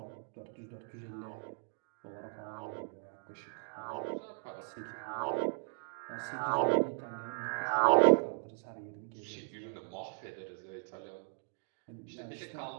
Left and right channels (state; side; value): silent; left; 53 dB below the other